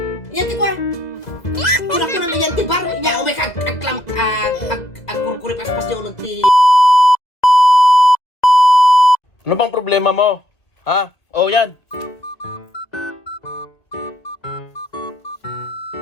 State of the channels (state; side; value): late; right; 2.0 ms